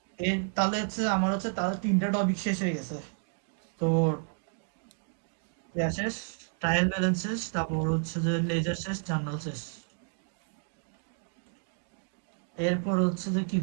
তাহলে হচ্ছে আমার হচ্ছে তাহলে 3টা টপিক শেষ হয়ে গেছে। তো শেষ, ট্রায়াল ব্যালেন্স শেষ, তারপর হচ্ছে যে লেজার শেষ, জার্নাল শেষ। এরপর হচ্ছে যে কি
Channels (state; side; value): silent; left; 57 dB below the other